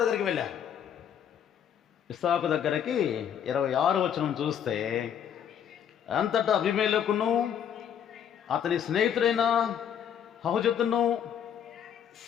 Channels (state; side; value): quieter; right; 8.9 dB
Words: దగ్గరికి వెళ్ళారు. ఇస్సాకు దగ్గరికి 26వ వచనం చూస్తే, అంతటా అబీమెలెకును అతని స్నేహితుడైన హుజతును